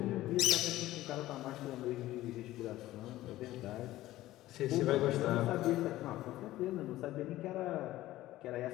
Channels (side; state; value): right; quieter; 15.8 dB